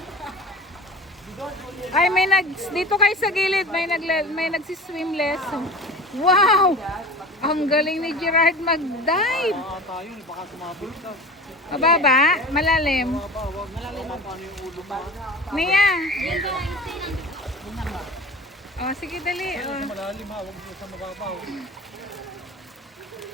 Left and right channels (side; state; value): both; normal; correlation 0.35